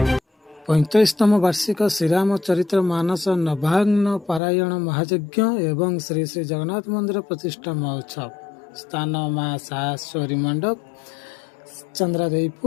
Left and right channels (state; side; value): drops out; right; at 4.4 s